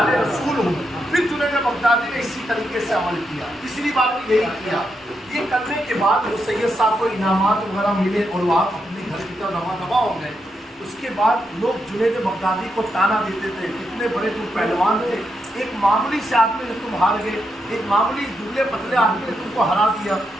رسول ہوں. پھر جنید بغدادی نے اسی طریقے سے عمل کیا. تیسری بات یہی کیا. یہ کرنے کے بعد وہ سید صاحب کو انعامات وغیرہ ملے اور وہ آپ اپنے گھر کی طرف رواں ہو گئے. اس کے بعد لوگ جنید بغدادی کو تانا دیتے تھے کتنے بڑے تم پہلوان تھے، ایک معمولی سے آدمی نے تم ہار گئے، ایک معمولی دبلے پتلے آدمی نے تم کو ہرا دیا.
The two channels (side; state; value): both; normal; correlation 0.82